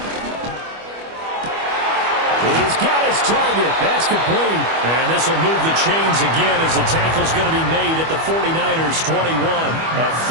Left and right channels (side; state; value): left; late; 25 ms